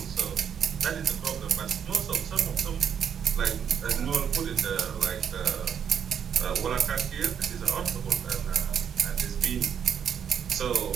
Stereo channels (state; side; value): quieter; left; 8.1 dB